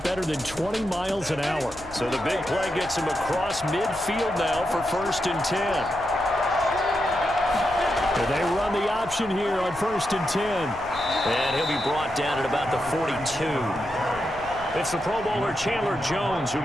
better than 20 miles an hour. So the big play gets him across midfield now for 1st and 10. And they run the option here on 1st and 10. And he'll be brought down at about the 42. It's the Pro Bowler Chandler Jones who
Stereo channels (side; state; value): left; noise; rumble, 19 dB below the sound